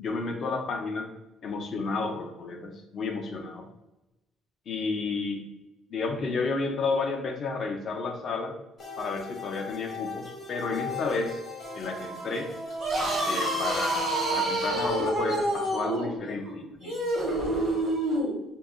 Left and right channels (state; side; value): normal; both; correlation 0.60